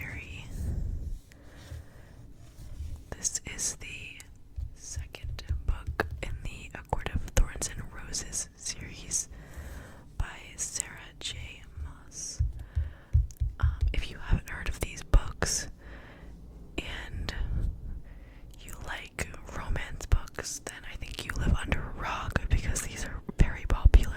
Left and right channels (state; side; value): identical; both; correlation 1.00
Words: This is the second book in the A Court of Thorns and Roses series by Sarah J. Maas. If you haven't heard of these books and you like romance books, then I think you live under a rock because these are very